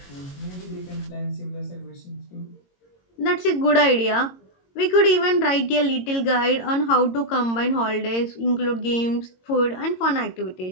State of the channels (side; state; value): right; late; 22 ms